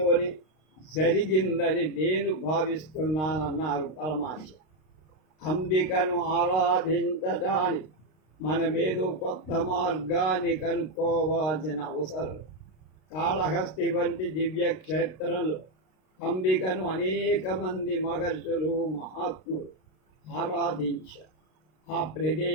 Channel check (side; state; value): right; late; 32 ms